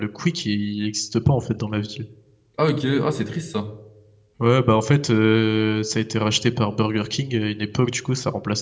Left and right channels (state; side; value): identical; both; correlation 1.00